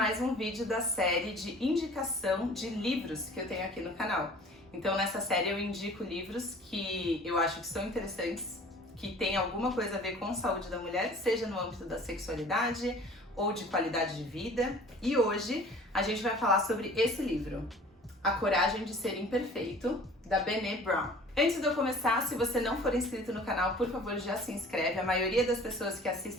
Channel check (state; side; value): normal; both; correlation 0.47